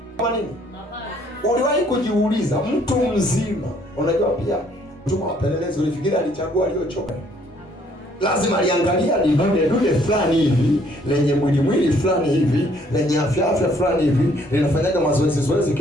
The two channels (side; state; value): both; normal; correlation 0.64